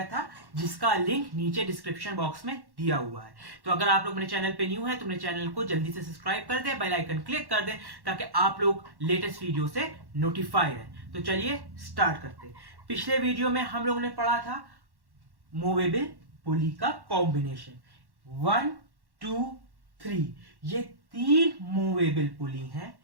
था, जिसका लिंक नीचे डिस्क्रिप्शन बॉक्स में दिया हुआ है। तो अगर आप लोग मेरे चैनल पे न्यू है तो मेरे चैनल को जल्दी से सब्सक्राइब कर दें, बेल आइकन क्लिक कर दें ताकि आप लोग लेटेस्ट वीडियो से नोटिफाई रहें। तो चलिए स्टार्ट करते हैं। पिछले वीडियो में हम लोग ने पढ़ा था मूवेबल पुली का कॉम्बिनेशन 1, 2, 3। ये 3 मूवेबल पुली हैं।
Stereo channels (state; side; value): late; left; 1.1 ms